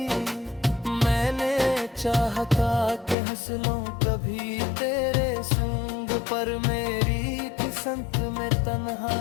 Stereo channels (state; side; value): drops out; right; at 3.2 s